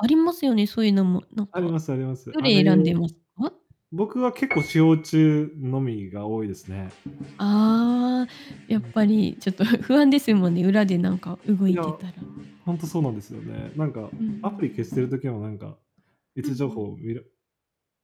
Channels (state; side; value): identical; both; correlation 1.00